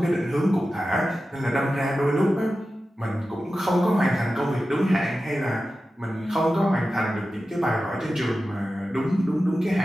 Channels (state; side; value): normal; both; correlation 0.93